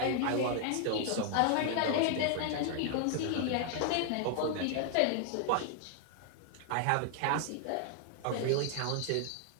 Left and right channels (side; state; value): both; different; correlation 0.00